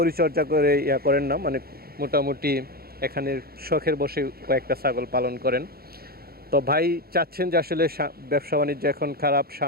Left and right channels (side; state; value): left; late; 0.44 ms